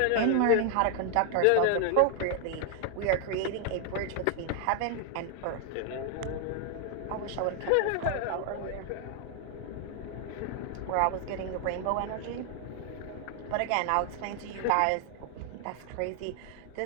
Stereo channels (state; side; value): different; both; correlation 0.00